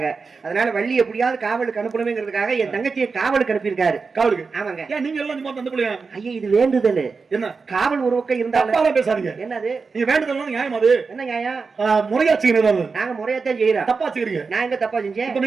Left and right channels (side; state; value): left; quieter; 4.7 dB